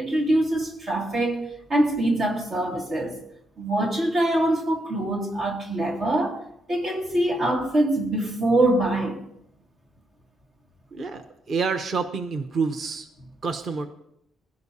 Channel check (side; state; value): both; normal; correlation 0.80